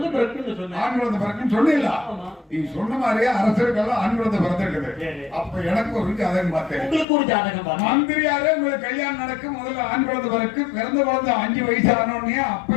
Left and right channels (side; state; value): right; drops out; at 7.1 s